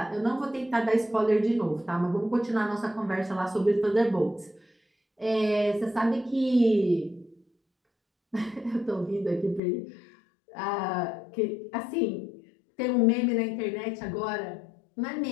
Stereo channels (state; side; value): drops out; right; at 9.6 s